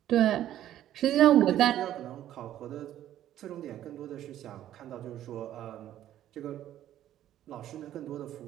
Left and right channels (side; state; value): left; quieter; 12.2 dB